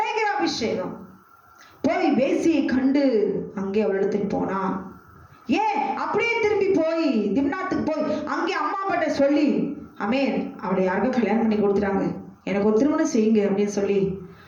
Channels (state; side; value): identical; both; correlation 1.00